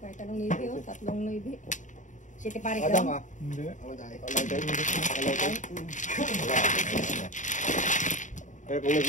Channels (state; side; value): late; right; 0.36 ms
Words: anong naibi oh. 3 naibi. City Paris Adam lang. ah. Hindi. Ako tayo. Kaya kung